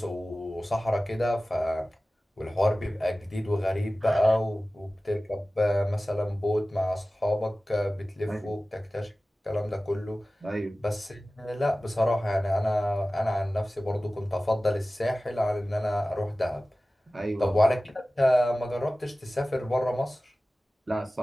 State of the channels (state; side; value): normal; both; correlation 0.96